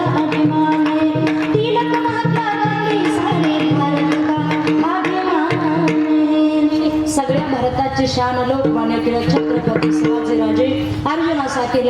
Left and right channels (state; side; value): identical; both; correlation 1.00